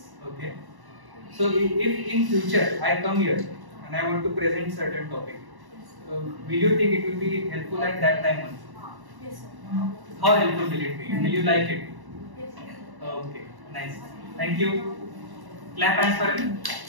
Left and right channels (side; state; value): left; late; 1.1 ms